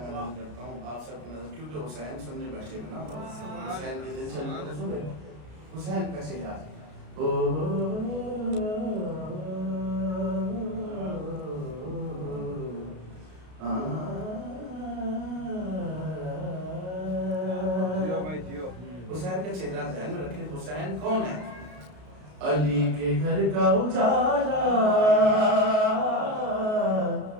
मैं नज़र करता हूँ आप सबकी नजर, क्योंकि हुसैन सुनने बैठे हुए ना, हुसैन के दिल चल सुने हुसैन का चेहरा। हुसैन का चेहरा ध्यान में रखे। हुसैन कौन है? अली के घर का उजाला,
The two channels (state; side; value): late; left; 33 ms